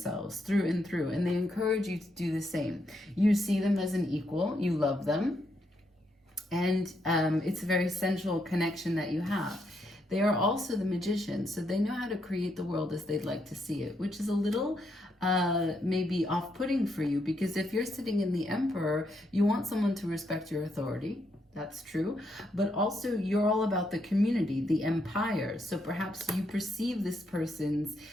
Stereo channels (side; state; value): both; normal; correlation 0.78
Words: through and through, and they encourage you to do the same. You see them as an equal. You love them. And it's a very sensual connection that you have. They are also the Magician, so they know how to create the world as they'd like to see it, which is a little maybe off-putting for you, because if you're sitting in the Emperor, you want someone to respect your authority. That's true. But also you're all about the community, the empire. So perhaps you perceive this person's